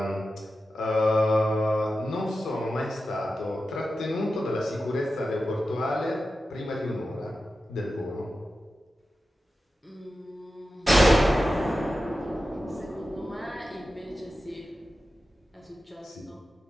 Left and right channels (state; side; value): normal; both; correlation 0.92